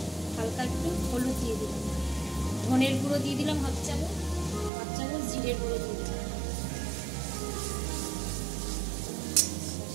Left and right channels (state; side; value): drops out; left; at 4.7 s